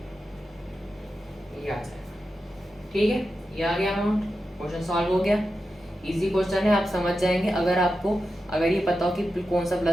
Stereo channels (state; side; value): normal; both; correlation 0.90